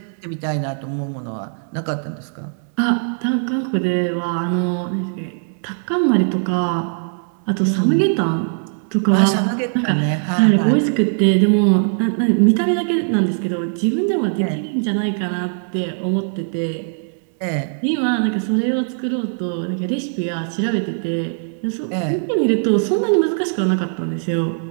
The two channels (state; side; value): silent; left; digital silence